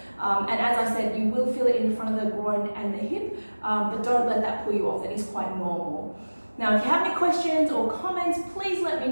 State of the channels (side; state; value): both; inverted; correlation -1.00